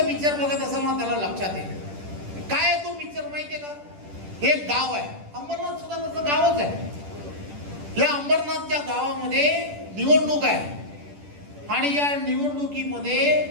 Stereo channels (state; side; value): late; left; 10 ms